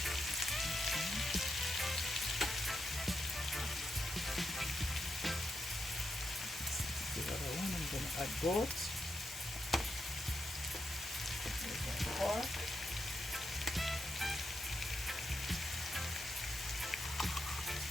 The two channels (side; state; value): both; normal; correlation 0.84